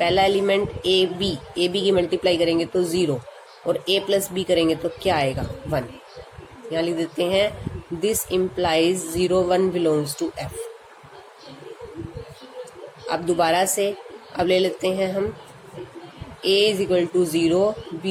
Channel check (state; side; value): identical; both; correlation 1.00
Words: एलिमेंट ए बी की मल्टीप्लाई करेंगे तो 0 और a प्लस बी करेंगे तो क्या आएगा, 1। यहाँ लिख देते हैं this implies 0 1 belongs to f। अब दोबारा से अब ले लेते हैं हम a is equal to 0